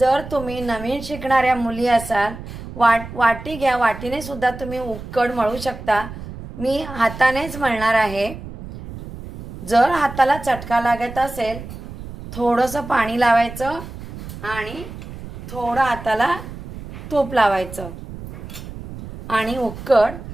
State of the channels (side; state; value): right; noise; rumble, 12 dB below the sound